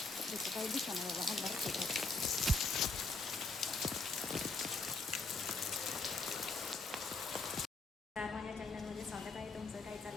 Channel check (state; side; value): quieter; right; 3.6 dB